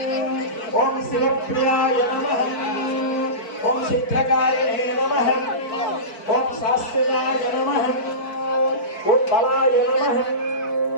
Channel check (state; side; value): late; right; 4.6 ms